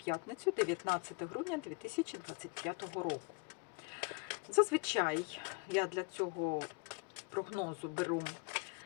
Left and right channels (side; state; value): right; quieter; 31.1 dB